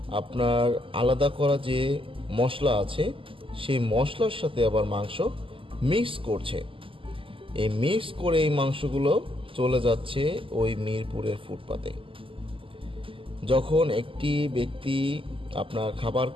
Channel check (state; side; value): late; left; 0.25 ms